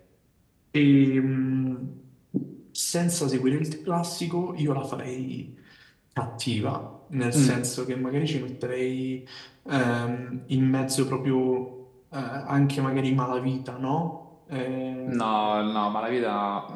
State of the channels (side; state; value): both; identical; correlation 1.00